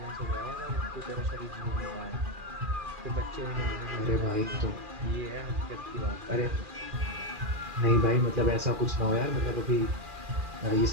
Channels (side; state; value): left; late; 2.4 ms